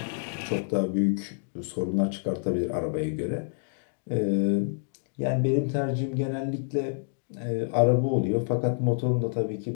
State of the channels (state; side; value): silent; right; digital silence